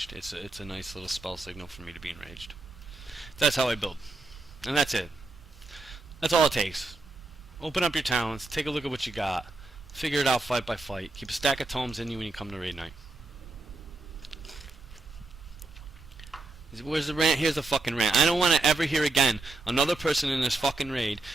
It's a nice little spell signal for me to be enraged. That's how I build, and that's it. That's all it takes. Open up your talents, take a look at what you got, figure it out fight by fight. Keep a stack of tomes in you when you come to raid night. Where's the rant? Here's the fucking rant. I don't want to ever hear again another person in this fucking raid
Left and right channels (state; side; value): quieter; left; 3.3 dB